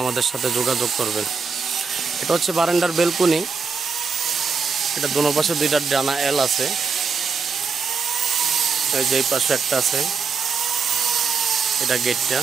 আমাদের সাথে যোগাযোগ করবেন। এটা হচ্ছে বারান্দার বেলকুনি। এটা দোনো পাশে দুইটা ডানা এল আছে। এই যে এই পাশে একটা আছে, এটা গেটটা।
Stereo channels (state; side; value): quieter; left; 5.3 dB